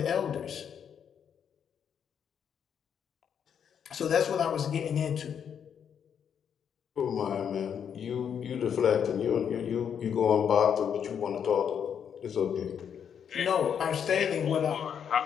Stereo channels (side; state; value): right; quieter; 8.0 dB